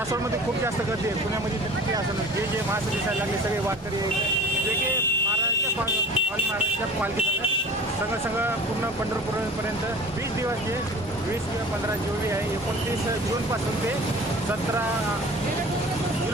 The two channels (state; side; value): normal; both; correlation 0.41